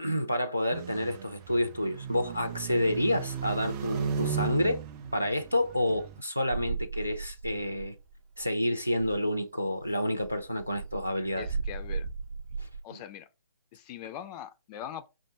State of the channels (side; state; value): both; inverted; correlation -0.82